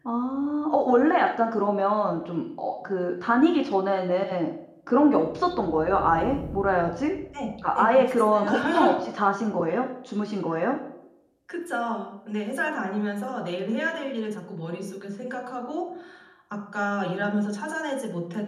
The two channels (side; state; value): both; identical; correlation 1.00